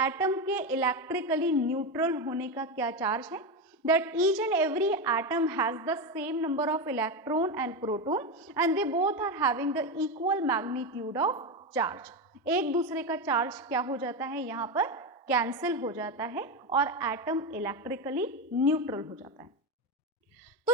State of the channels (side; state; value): both; normal; correlation 0.14